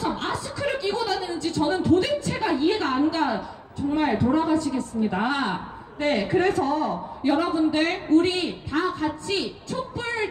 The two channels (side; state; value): both; identical; correlation 1.00